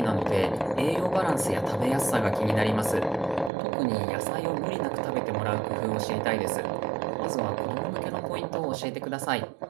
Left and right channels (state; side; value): drops out; left; at 3.5 s